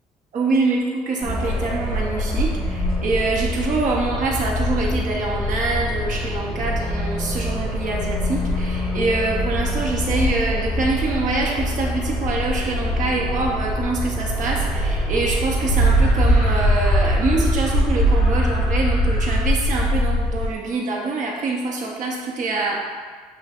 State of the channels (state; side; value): normal; both; correlation 0.63